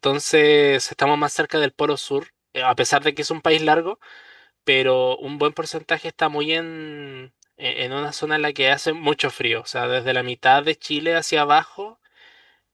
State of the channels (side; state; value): both; identical; correlation 1.00